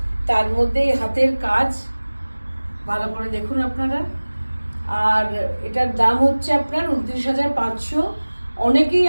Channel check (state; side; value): inverted; both; correlation -1.00